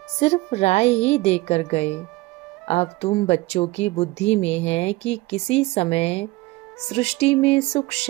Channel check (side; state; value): left; quieter; 20.7 dB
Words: सिर्फ राय ही देकर गए। अब तुम बच्चों की बुद्धि में है कि किसी समय सृष्टि में सुख,